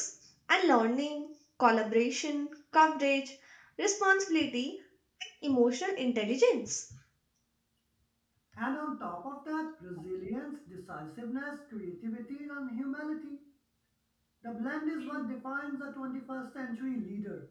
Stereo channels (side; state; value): both; identical; correlation 1.00